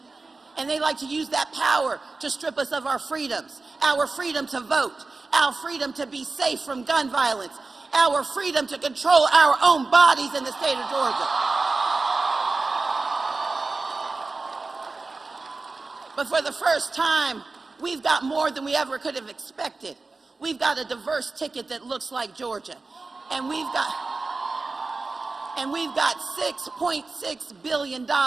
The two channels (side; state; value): left; quieter; 3.7 dB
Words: And they like to use that power to strip us of our freedoms. Our freedom to vote, our freedom to be safe from gun violence, our freedom to control our own bodies in the state of Georgia. But for the first time, we've got more than we ever could have expected. We've got a diverse ticket that looks like Georgia. And we've got $6.6 billion